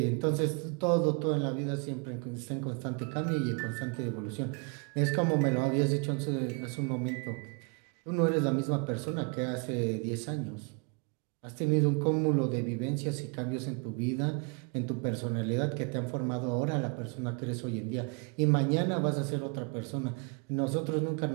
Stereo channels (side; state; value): left; quieter; 34.3 dB